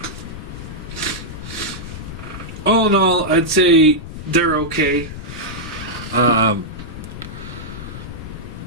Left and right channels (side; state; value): left; noise; rumble, 10 dB below the sound